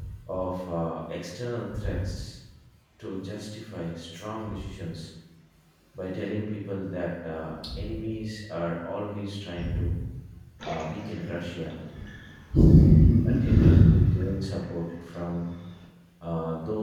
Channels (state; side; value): identical; both; correlation 1.00